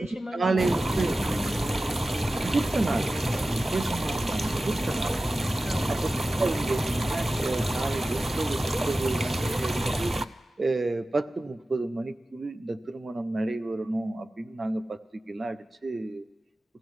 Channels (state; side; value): normal; both; correlation 0.95